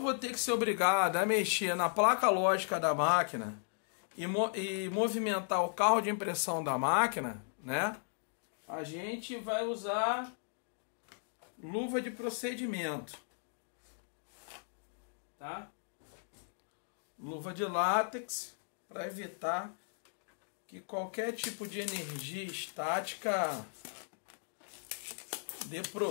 ter que ser obrigado a mexer na placa lógica da máquina e movimentar o carro de impressão da máquina, né? A gente vai usar luva de procedimento, tá? Luva de látex para evitar que qualquer tipo de energia estática dê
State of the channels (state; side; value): silent; right; digital silence